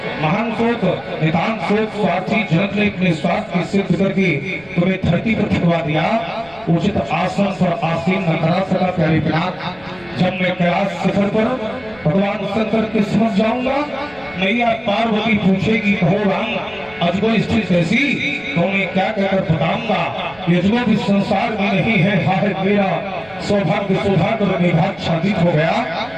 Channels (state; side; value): noise; right; rumble, 26 dB below the sound